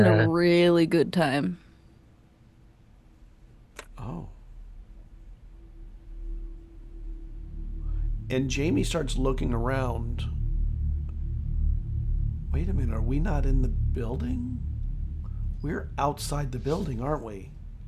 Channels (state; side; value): identical; both; correlation 1.00